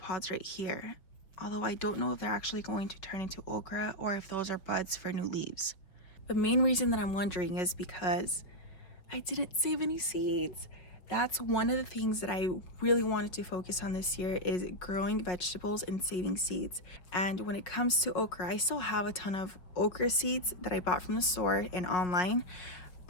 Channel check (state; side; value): late; right; 5.3 ms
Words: right here. Although I don't know if they're actually going to turn into okra or if those are buds for new leaves. The main reason that I'm wondering is because I didn't save any seeds. That's one of the things that I really wanted to focus on this year, is growing vegetables and saving seeds. And when it comes to okra, I still have a ton of okra seeds that I bought from the store and online.